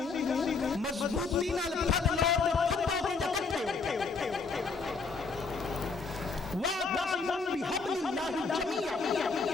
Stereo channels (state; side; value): quieter; right; 4.5 dB